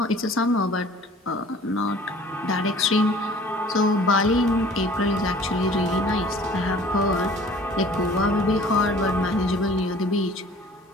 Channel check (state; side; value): normal; both; correlation 0.49